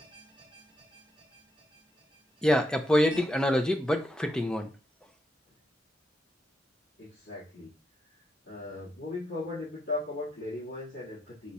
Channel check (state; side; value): normal; both; correlation 0.81